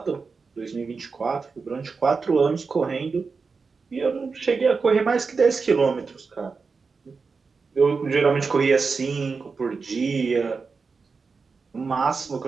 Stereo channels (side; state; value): left; quieter; 4.8 dB